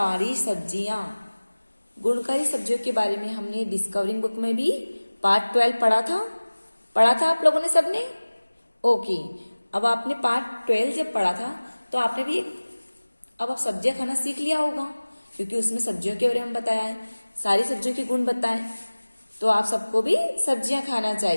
सब्जियां। गुणकारी सब्जियों के बारे में हमने डिस्कवरिंग बुक में भी पार्ट 12 पढ़ा था आप लोगों ने सबने। ओके, अब आपने पार्ट 12 जब पढ़ा था तो आपने भी अब आप सब्जियां खाना सीख लिया होगा, क्योंकि उसमें सब्जियों के बारे में बताया है, सारी सब्जियों के गुण बताए। तो आप सबको भी सब्जियां खाना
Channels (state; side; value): inverted; both; correlation -1.00